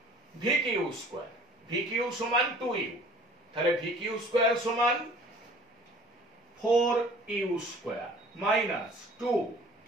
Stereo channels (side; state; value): both; normal; correlation 0.49